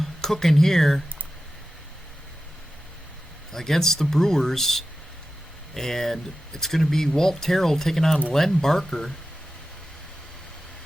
cooking here against the Brewers. And it's going to be Walt Terrell taking on Len Barker.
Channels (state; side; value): normal; both; correlation 0.93